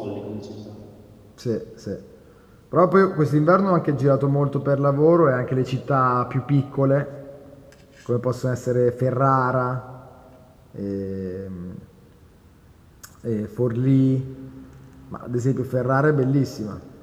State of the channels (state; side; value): identical; both; correlation 1.00